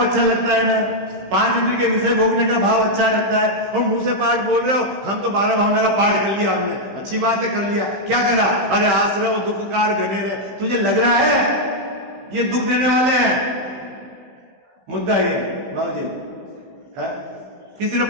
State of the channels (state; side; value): late; left; 15 ms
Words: अच्छा लगता है ना, 5 इंद्रिय के विषय भोगने का भाव अच्छा लगता है, और मुंह से पाठ बोल रहे हो, हम तो 12 भावना का पाठ कर लिया हमने, अच्छी बात है, कर लिया, क्या करा, अरे आश्रव दुखकार घनेरे, तुझे लग रहा है ये दुख देने वाले हैं, मुद्दा ये बाबू जी है कि